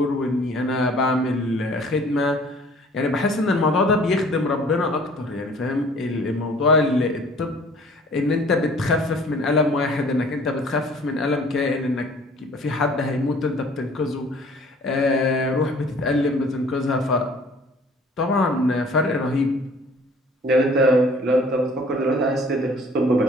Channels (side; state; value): both; normal; correlation 0.52